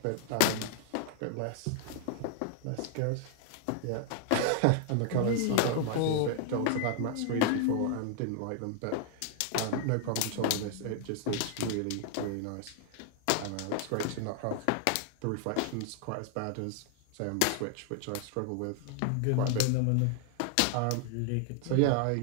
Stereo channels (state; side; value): different; both; correlation 0.00